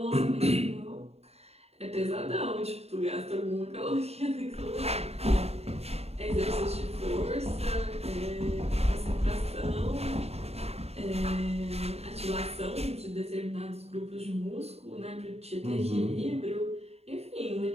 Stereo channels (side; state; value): left; late; 0.30 ms